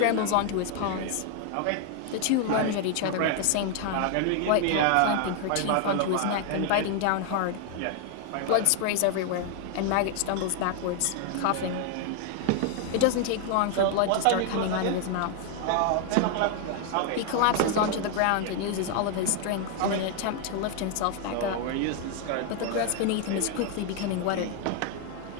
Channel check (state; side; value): different; both; correlation 0.00